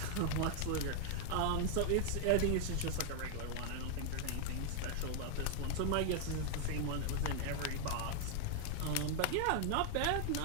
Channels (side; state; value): both; different; correlation 0.00